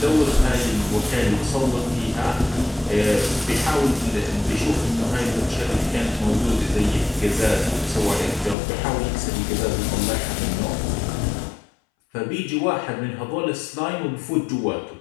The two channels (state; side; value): drops out; right; at 8.6 s